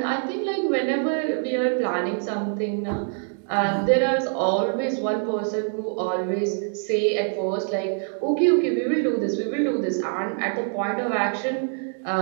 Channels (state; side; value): silent; left; 62 dB below the other